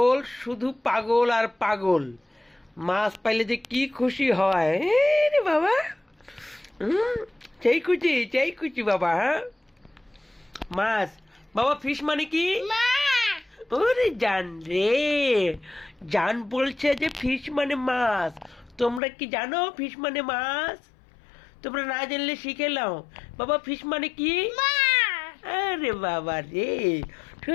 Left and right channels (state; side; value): drops out; right; at 19.0 s